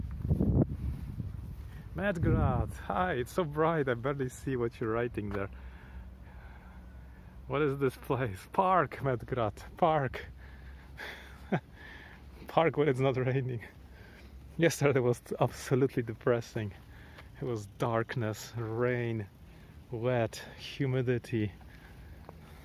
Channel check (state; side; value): identical; both; correlation 1.00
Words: Medgrad, hi, it's so bright, I barely see what you're writing there. What is this place? Park, Medgrad, park. Park when it's not raining. Yesterday was absolutely depressing. It was darkness, rain, wet, humidity.